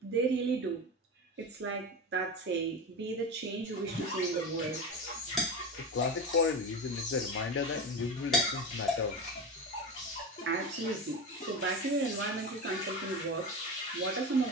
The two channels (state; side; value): normal; both; correlation 0.23